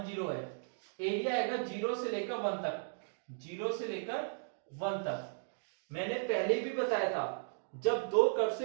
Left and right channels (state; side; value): silent; left; digital silence